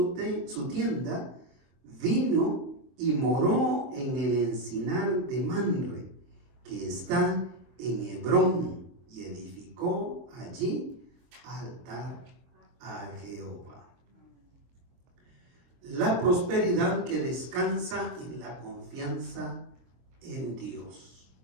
tienda, vino y moró en el encinar de Manre, que está en Hebrón, y edificó allí altar a Jehová. La prosperidad que descansa en la confianza en Dios.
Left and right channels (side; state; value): left; late; 23 ms